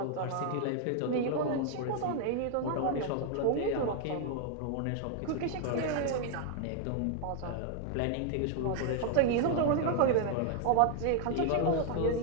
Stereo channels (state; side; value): different; both; correlation 0.00